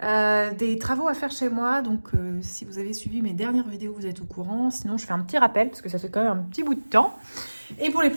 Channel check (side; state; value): both; inverted; correlation -1.00